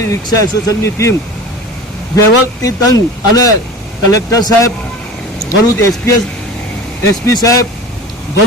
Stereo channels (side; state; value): both; normal; correlation 0.36